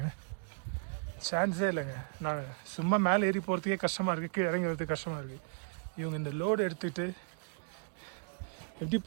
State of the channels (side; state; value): left; quieter; 39.7 dB